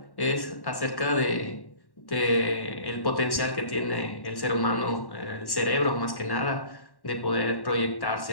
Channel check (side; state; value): right; late; 1.1 ms